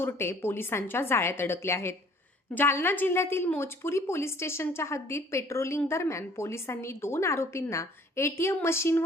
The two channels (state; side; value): normal; both; correlation 0.56